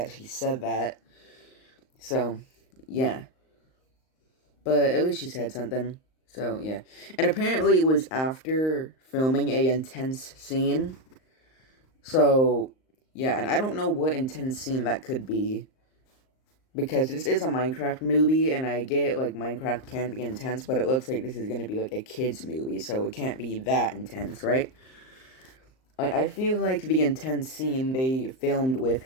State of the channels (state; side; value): late; right; 38 ms